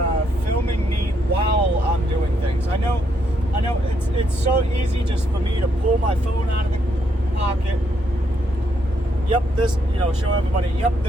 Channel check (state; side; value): normal; both; correlation 0.75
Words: filming me while I'm doing things. I know it's so easy just for me to pull my phone out of the pocket. Yep, this, show everybody, yep,